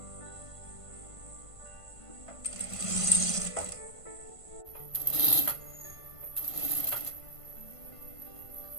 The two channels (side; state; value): right; late; 1.5 ms